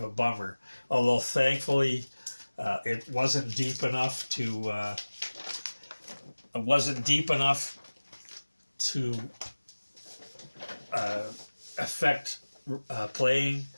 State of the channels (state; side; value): inverted; both; correlation -1.00